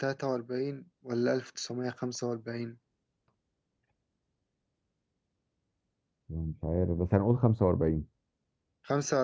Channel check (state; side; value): identical; both; correlation 1.00